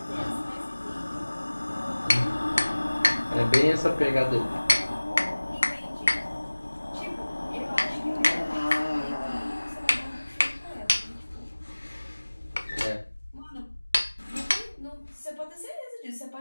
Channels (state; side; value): inverted; both; correlation -1.00